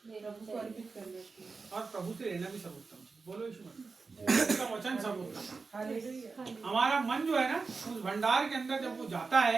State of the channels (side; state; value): left; quieter; 4.4 dB